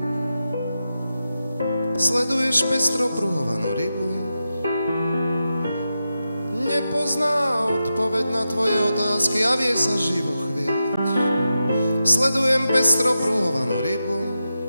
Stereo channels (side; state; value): both; inverted; correlation -0.89